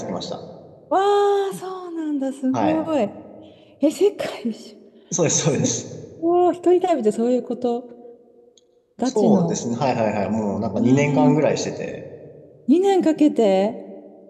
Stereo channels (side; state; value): both; identical; correlation 1.00